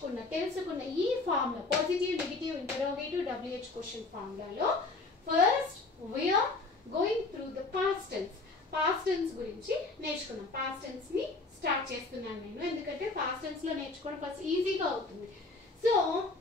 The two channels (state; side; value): quieter; right; 3.5 dB